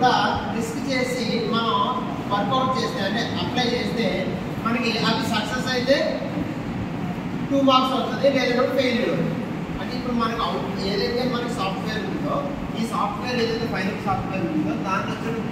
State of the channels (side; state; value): both; identical; correlation 1.00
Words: రిస్క్ చేసి మనం వర్కౌట్ చేస్తే అంటే అప్లై చేస్తే మనకి అవి సక్సెస్ అయితే 2 మార్క్స్ వస్తుంది, లేదంటే ఫెయిల్యూర్. అంటే ఇప్పుడు మనకు ఏదైతే మనకి సాఫ్ట్వేర్ ఉందో ఈ సాఫ్ట్వేర్ ఏదైతే ఫైనల్ సాఫ్ట్వేర్ ఉందో దాన్ని